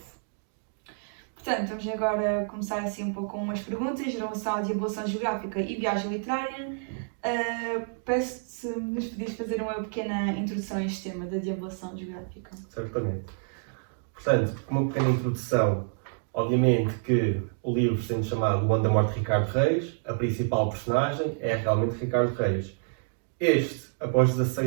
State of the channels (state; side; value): silent; left; digital silence